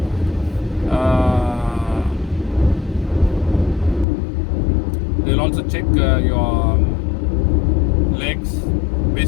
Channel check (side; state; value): right; drops out; at 4.0 s